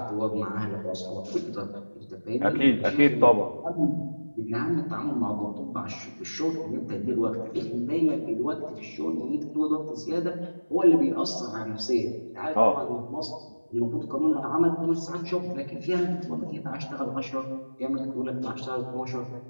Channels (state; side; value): inverted; both; correlation -1.00